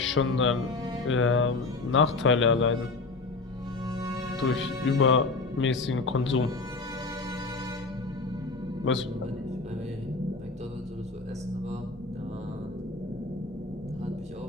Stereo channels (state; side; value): quieter; right; 3.7 dB